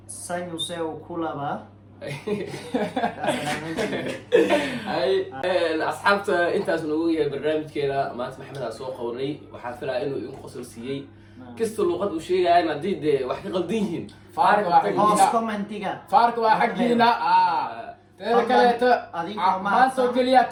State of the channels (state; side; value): identical; both; correlation 1.00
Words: sanyu seu kulaba asxaabta intaas nagu yahay barnaamijkeena maanta maxamed aan soo qabanay waxaa filaya inuu idin qosol siiyey kasta luuqad uu sheegayaan haddii dee wax ka qaldan yihiin hoos commentiga faarka waa xaggiina teeda kaleeto maanta oo keliya